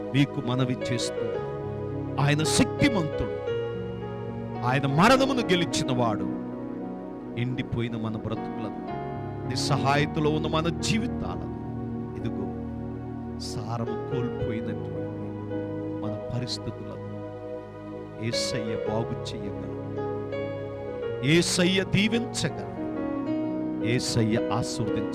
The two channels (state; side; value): identical; both; correlation 1.00